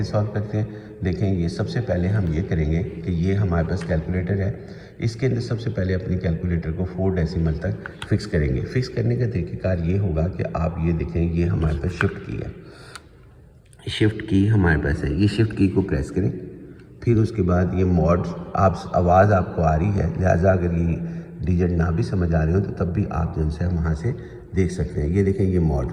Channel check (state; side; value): identical; both; correlation 1.00